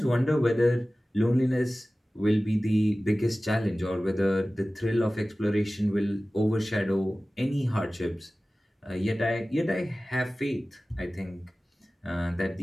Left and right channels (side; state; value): both; normal; correlation 0.97